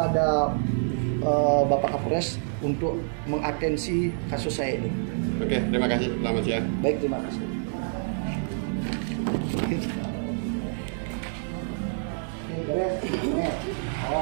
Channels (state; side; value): silent; left; digital silence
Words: Bapak Kapolres untuk mengatensi kasus saya ini. Oke, terima kasih. Selamat siang. Baik, terima kasih. Ini beres. Ini.